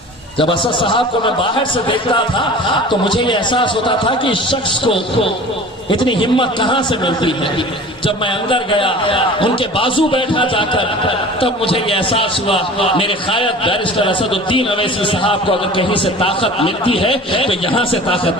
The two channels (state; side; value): normal; both; correlation 0.40